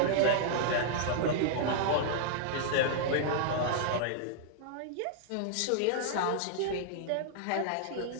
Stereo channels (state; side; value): different; both; correlation -0.01